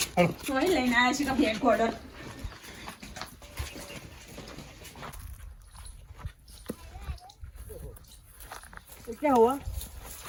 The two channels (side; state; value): both; identical; correlation 1.00